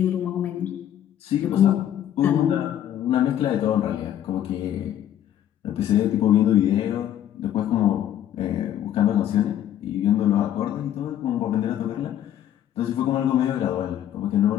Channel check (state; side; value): quieter; right; 11.1 dB